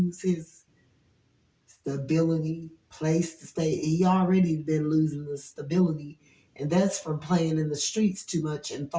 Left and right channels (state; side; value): identical; both; correlation 1.00